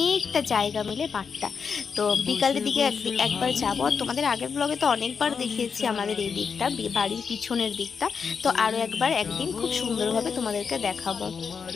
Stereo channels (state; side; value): quieter; right; 6.0 dB